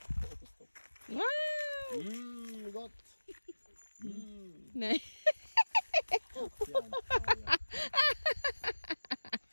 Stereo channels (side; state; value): both; inverted; correlation -1.00